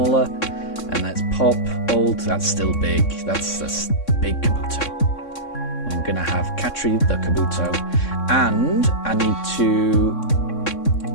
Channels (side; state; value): right; late; 3.6 ms